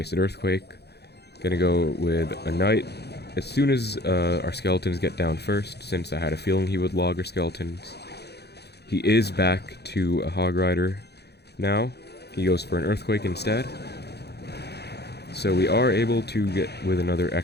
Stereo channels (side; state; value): right; late; 0.48 ms